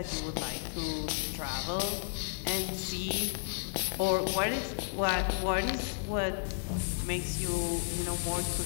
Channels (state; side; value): silent; right; digital silence